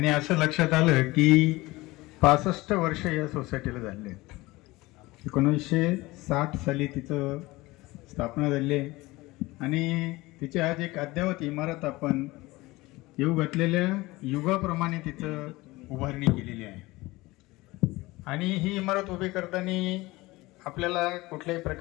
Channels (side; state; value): right; quieter; 20.6 dB